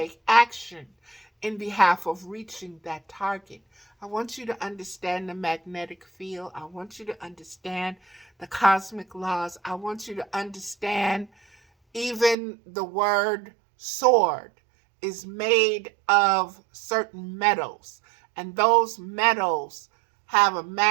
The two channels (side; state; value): left; drops out; at 12.4 s